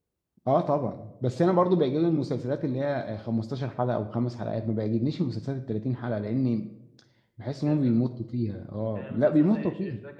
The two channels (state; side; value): identical; both; correlation 1.00